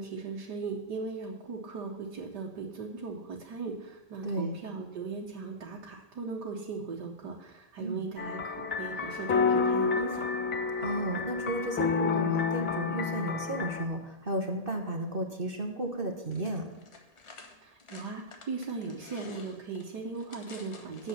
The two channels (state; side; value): late; left; 1.8 ms